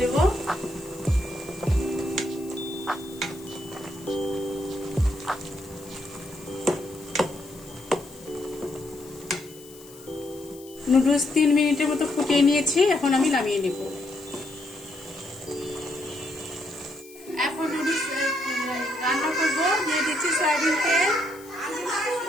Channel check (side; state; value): left; noise; hiss, 21 dB below the sound